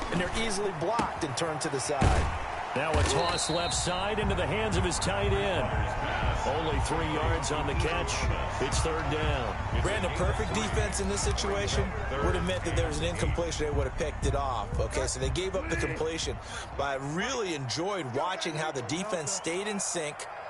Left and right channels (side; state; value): both; identical; correlation 1.00